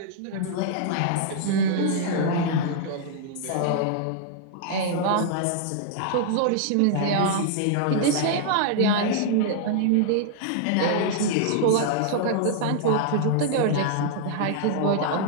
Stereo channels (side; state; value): both; different; correlation -0.01